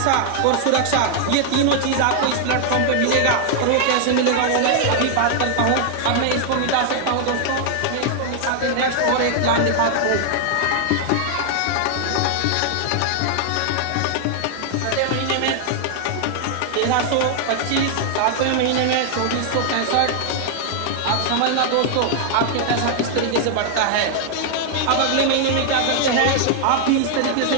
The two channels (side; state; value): both; different; correlation 0.00